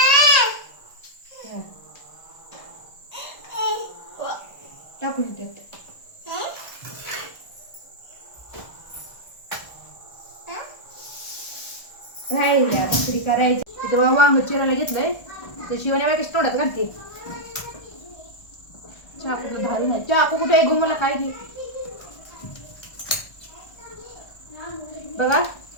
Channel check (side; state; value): right; late; 1.3 ms